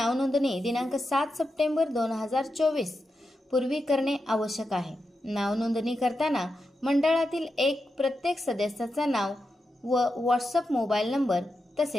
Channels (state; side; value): normal; both; correlation 0.88